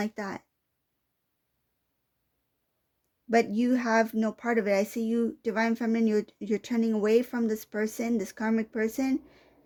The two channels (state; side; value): identical; both; correlation 1.00